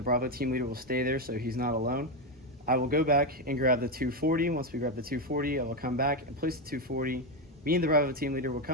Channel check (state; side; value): normal; both; correlation 0.09